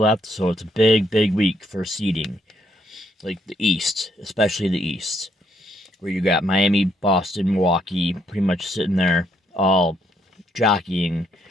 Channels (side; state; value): both; normal; correlation 0.72